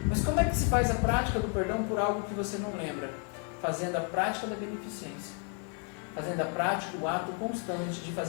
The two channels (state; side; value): quieter; right; 35.9 dB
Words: Mas como é que se faz a prática do perdão por algo que você não lembra? Fazendo a prática da beneficência. Fazendo a prática, o ato constante de